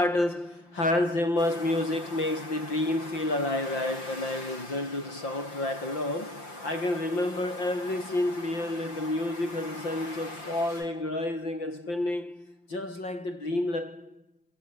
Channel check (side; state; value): right; late; 5.8 ms